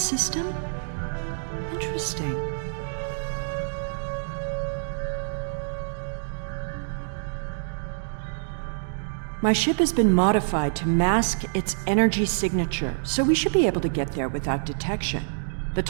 Interesting. My ship has been modified to mask its energy signature, so we should be able to get there without detection. The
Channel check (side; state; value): left; silent; digital silence